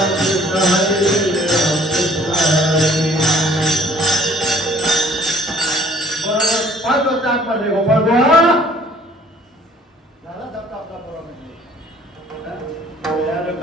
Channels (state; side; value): normal; both; correlation 0.56